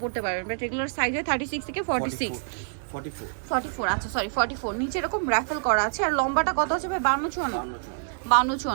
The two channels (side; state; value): left; silent; digital silence